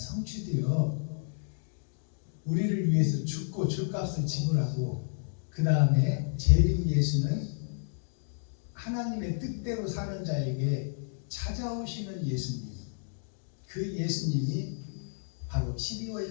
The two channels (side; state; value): right; silent; digital silence